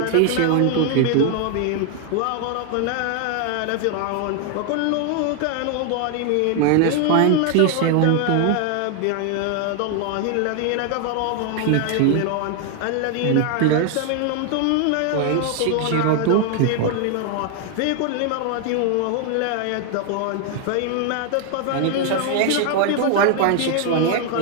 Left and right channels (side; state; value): both; different; correlation 0.00